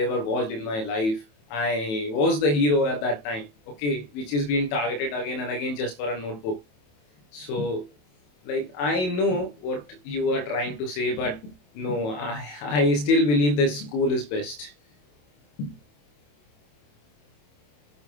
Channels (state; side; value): late; right; 27 ms